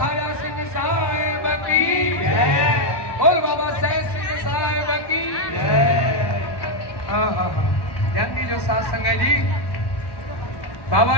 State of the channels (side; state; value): right; late; 1.1 ms